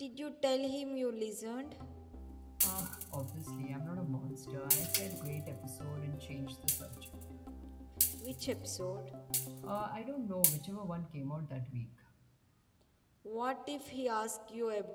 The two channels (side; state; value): both; identical; correlation 1.00